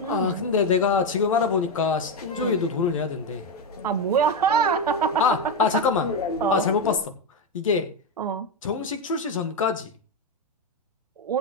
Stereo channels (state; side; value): normal; both; correlation 0.08